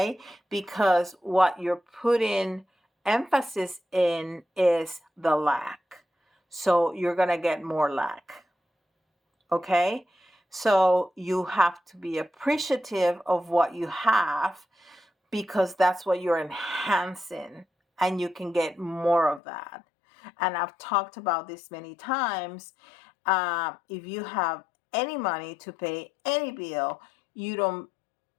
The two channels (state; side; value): drops out; right; at 19.4 s